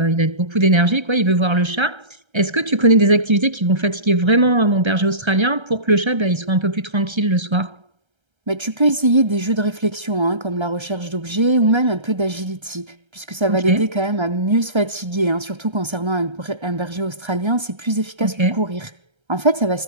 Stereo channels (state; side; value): late; left; 1.3 ms